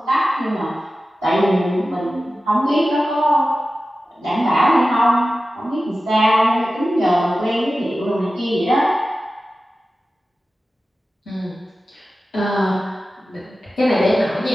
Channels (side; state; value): both; normal; correlation 0.94